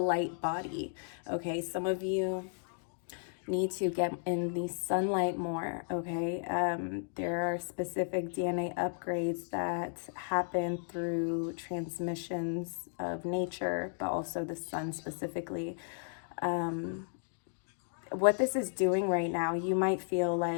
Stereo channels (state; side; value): silent; right; digital silence